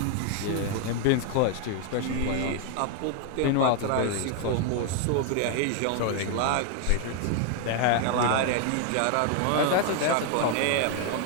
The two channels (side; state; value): both; different; correlation 0.00